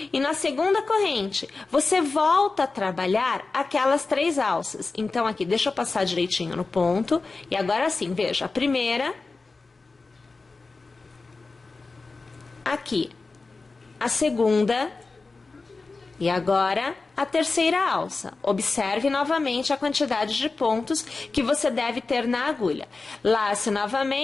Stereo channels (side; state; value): right; quieter; 3.8 dB